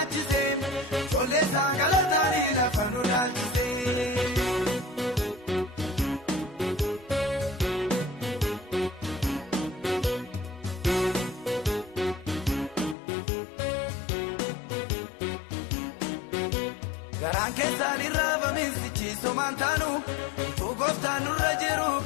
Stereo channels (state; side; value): drops out; right; at 13.0 s